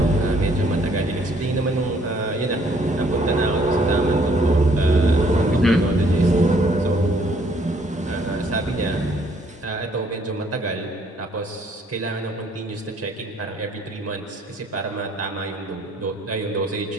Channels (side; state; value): both; normal; correlation 0.64